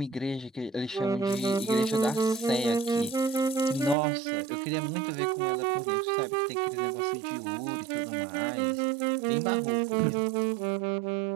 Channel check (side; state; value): left; drops out; at 4.0 s